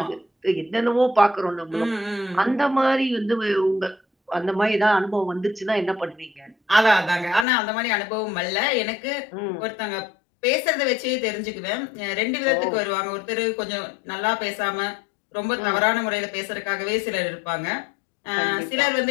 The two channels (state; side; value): drops out; right; at 7.5 s